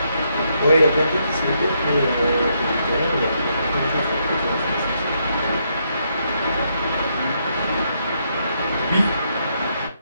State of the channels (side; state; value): both; inverted; correlation -0.76